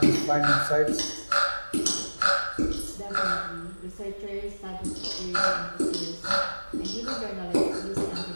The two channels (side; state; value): both; inverted; correlation -1.00